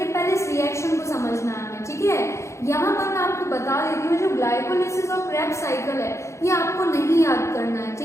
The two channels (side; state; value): right; late; 0.14 ms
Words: पहले इस रिएक्शन को समझना है हमें, ठीक है? यहाँ पर मैं आपको बता देती हूँ जो ग्लाइकोलिसिस और क्रेब्स साइकिल है ये आपको नहीं याद करना है,